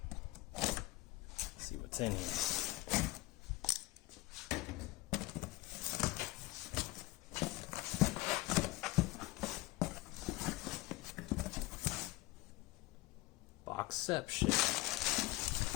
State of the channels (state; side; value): quieter; right; 19.7 dB